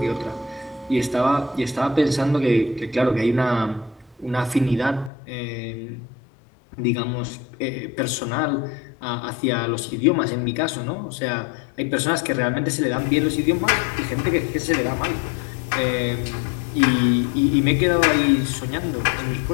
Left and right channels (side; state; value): right; drops out; at 5.1 s